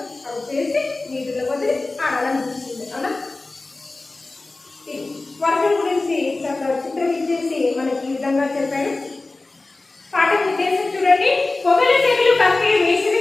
అవి చేసి నీటిలో వదిలి ఆడాలనిపిస్తుంది. అవునా? వర్షం గురించి చిత్రం ఇచ్చేసి మనకి ఈ విధంగా చెప్పాడు. పాఠం ఉద్దేశం చూడండి, పొగలు తెగులు కక్కే వేసవి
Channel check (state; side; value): quieter; right; 3.3 dB